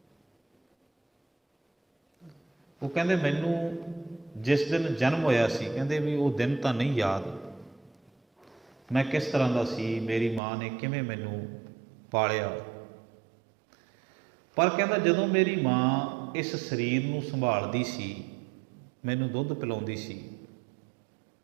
ਉਹ ਕਹਿੰਦੇ ਮੈਨੂੰ ਜਿਸ ਦਿਨ ਜਨਮ ਹੋਇਆ ਸੀ, ਕਹਿੰਦੇ ਵੀ ਉਹ ਦਿਨ ਤਾਂ ਨਹੀਂ ਯਾਦ, ਮੈਂ ਕਿਸ ਤਰ੍ਹਾਂ ਦਾ ਸੀ, ਮੇਰੀ ਮਾਂ ਨੇ ਕਿਵੇਂ ਮੈਨੂੰ ਪਾਲਿਆ। ਪਰ ਕਹਿੰਦਾ ਜਦੋਂ ਮੇਰੀ ਮਾਂ ਇਸ ਸਰੀਰ ਨੂੰ ਸੰਭਾਲਦੀ ਸੀ, ਮੈਨੂੰ ਦੁੱਧ ਪਿਲਾਉਂਦੀ ਸੀ,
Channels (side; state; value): left; drops out; at 10.4 s